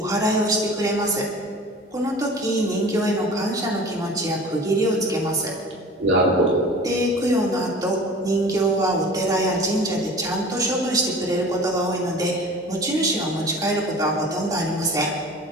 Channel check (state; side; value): normal; both; correlation 0.41